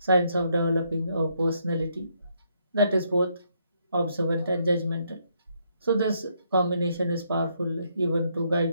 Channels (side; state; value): both; inverted; correlation -0.74